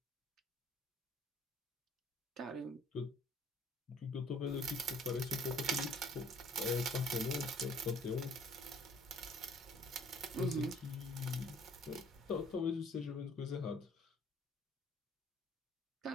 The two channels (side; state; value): both; normal; correlation 0.57